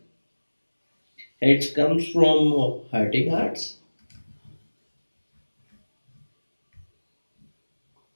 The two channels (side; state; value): both; inverted; correlation -1.00